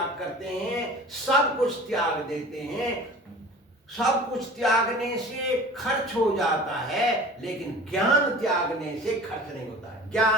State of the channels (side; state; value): both; normal; correlation 0.41